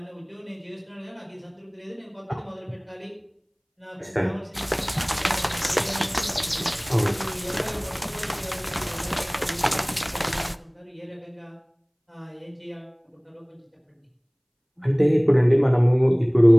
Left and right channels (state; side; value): identical; both; correlation 1.00